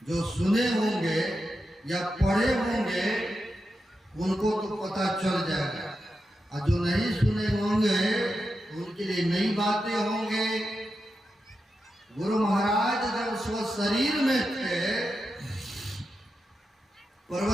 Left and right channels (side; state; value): both; normal; correlation 0.89